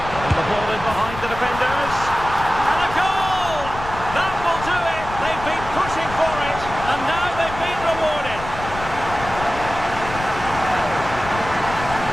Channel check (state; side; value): noise; left; rumble, 11 dB below the sound